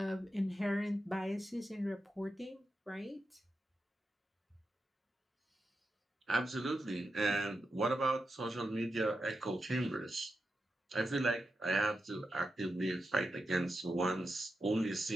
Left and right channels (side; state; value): both; normal; correlation 0.88